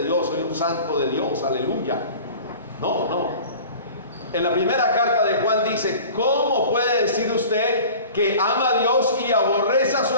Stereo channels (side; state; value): both; inverted; correlation -0.41